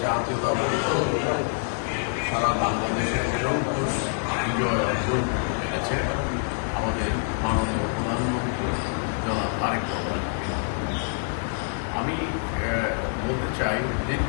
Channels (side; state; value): right; silent; 61 dB below the other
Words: জাতীয়তাবাদী দল সারা বাংলাদেশের জনপুষ বিজয় অর্জন করতে পেরেছে আমাদের মাননীয় প্রধানমন্ত্রী জনাব তারেক রহমান। আমি বলতে চাই